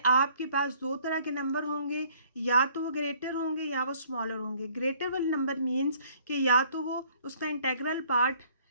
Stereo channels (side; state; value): both; inverted; correlation -0.59